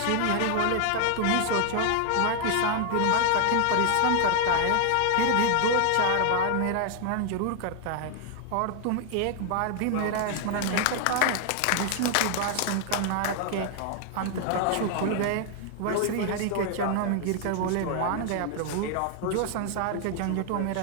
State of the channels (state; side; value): different; both; correlation 0.00